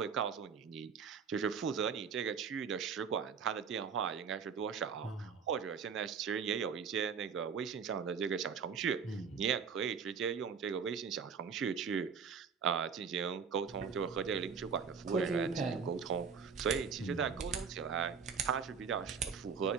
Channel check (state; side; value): quieter; left; 6.3 dB